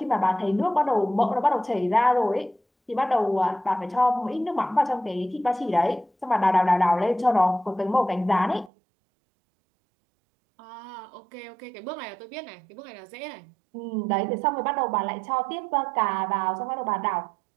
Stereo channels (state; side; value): drops out; left; at 8.7 s